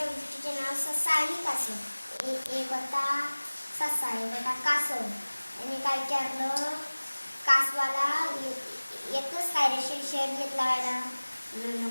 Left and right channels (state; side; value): inverted; both; correlation -1.00